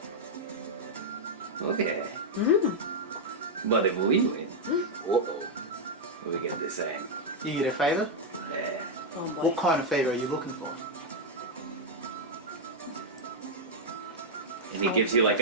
Okay. But if we win, we get the same. You get a favor? Yeah. Oh boy. What kind of favor are you looking for? And he gives you like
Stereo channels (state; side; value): normal; both; correlation -0.01